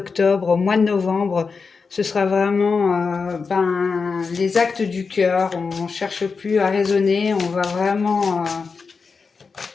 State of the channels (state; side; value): quieter; right; 4.9 dB